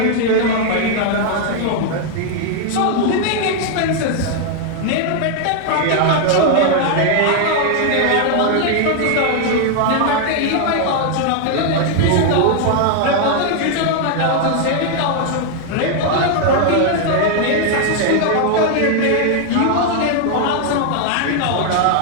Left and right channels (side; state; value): both; different; correlation 0.00